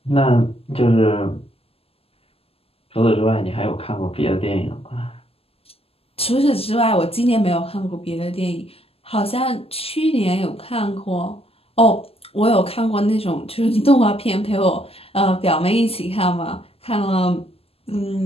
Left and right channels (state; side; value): late; right; 0.28 ms